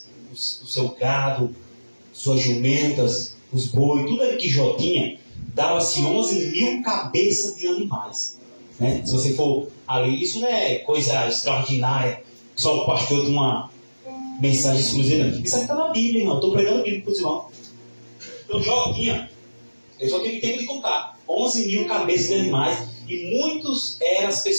o seu gado, suas jumentas, os bois, tudo aquilo que Jó tinha, dava-se 11 mil cabeças de animais. Se você for ali, isso não é coisa extraordinária, só o pastor de uma mensagem exclusiva. Isso aqui está na Bíblia, irmão. Estou pregando a Bíblia para os irmãos. Então Jó tinha, eu só tive tempo de contar, 11 mil cabeças de animais, e muitos eram as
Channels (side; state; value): both; inverted; correlation -1.00